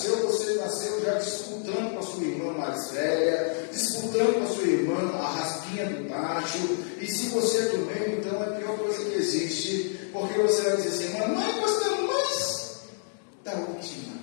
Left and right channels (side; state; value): right; silent; digital silence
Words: já disputando com a sua irmã mais velha, disputando com a sua irmã a raspinha do tacho. E se você é do meio, então é a pior coisa que existe, porque você vai dizer assim, mamãe, gostamos mais da última.